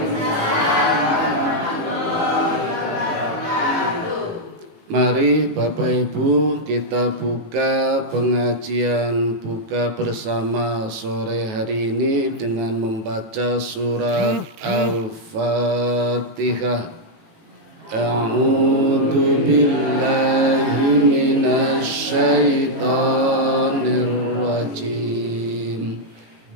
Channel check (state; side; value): late; left; 19 ms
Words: Mari Bapak Ibu kita buka pengajian buka bersama sore hari ini dengan membaca surat Al-Fatihah. A'udzu billahi minasy syaithanir rajim.